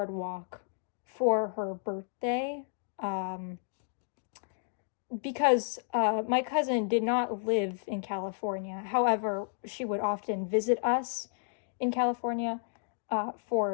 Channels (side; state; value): right; silent; digital silence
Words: for her birthday, because my cousin did not live in California. However, she would often visit us in California